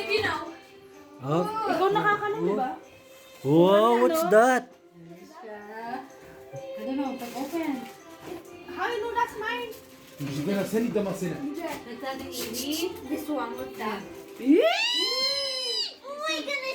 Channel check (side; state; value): both; identical; correlation 1.00